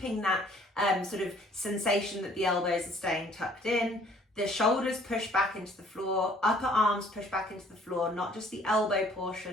that sort of sensation that the elbows are staying tucked in. The shoulders push back into the floor, upper arms push back into the floor, not just the elbow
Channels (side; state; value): both; normal; correlation 0.57